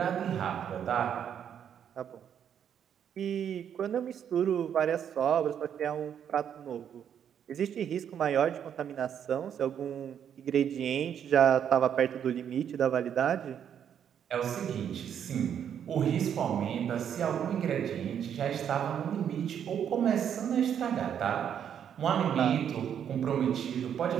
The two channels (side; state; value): left; quieter; 8.8 dB